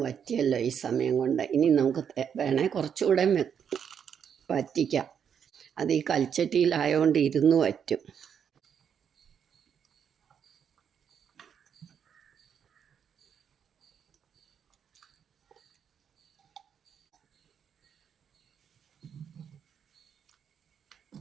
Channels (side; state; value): left; quieter; 7.8 dB